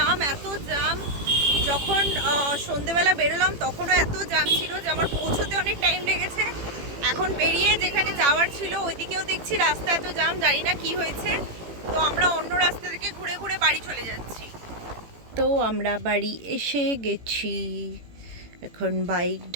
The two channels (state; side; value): late; left; 18 ms